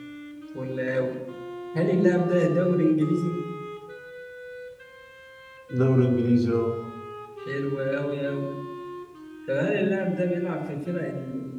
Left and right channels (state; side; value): identical; both; correlation 1.00